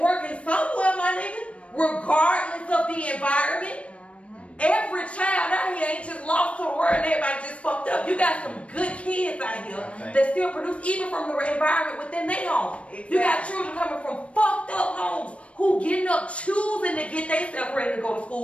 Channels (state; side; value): late; right; 0.062 ms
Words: somewhere, my nigga, regardless of the environment. Every child out here ain't just lost to the world and everybody just fucked up. You got some good kids out here that still produce, even from the environment within their home. Exactly. You got children coming from fucked up homes who getting up choosing to get themselves ready to go to